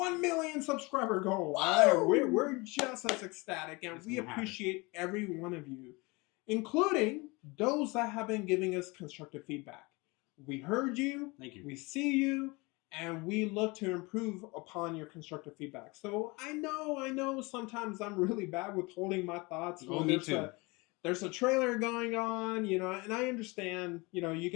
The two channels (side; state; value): right; quieter; 25.8 dB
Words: million subscriber goal. We're just as ecstatic, and we appreciate every one of you, including those that have been giving us constructive feedback. We heard you, thank you. We see you, and we look to improve upon your constructive feedback. So I know sometimes I'm really bad with holding my thoughts. Oh, me too. There's a trailer going on, and I understand, you